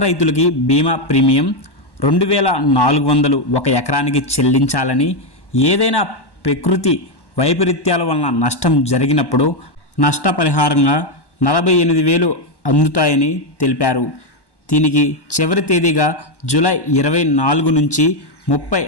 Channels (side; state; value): right; late; 1.1 ms